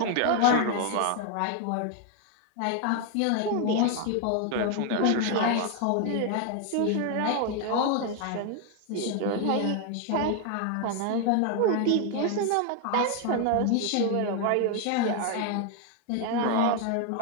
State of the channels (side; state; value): both; different; correlation 0.01